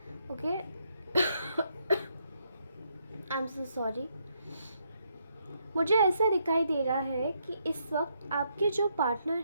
Okay, I am so sorry. मुझे ऐसा दिखाई दे रहा है कि इस वक्त आपके जो पार्टनर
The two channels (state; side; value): inverted; both; correlation -0.75